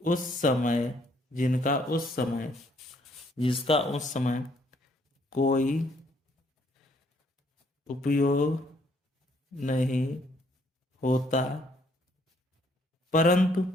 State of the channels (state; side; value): normal; both; correlation 0.66